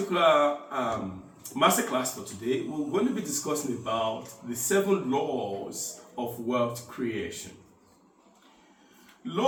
masterclass for today, we're going to be discussing about the 7 laws of wealth creation.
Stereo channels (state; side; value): identical; both; correlation 1.00